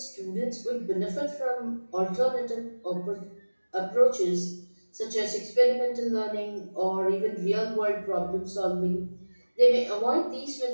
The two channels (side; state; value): both; inverted; correlation -1.00